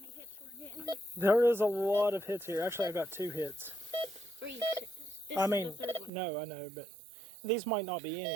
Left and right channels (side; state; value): left; drops out; at 6.1 s